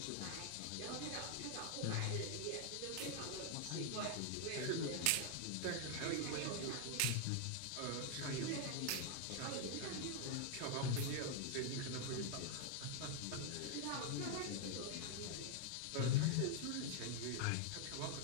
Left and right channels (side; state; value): both; different; correlation 0.00